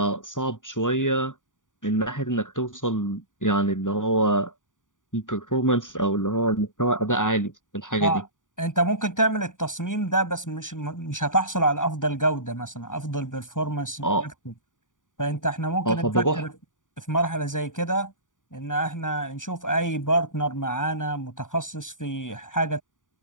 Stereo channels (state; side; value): late; right; 0.88 ms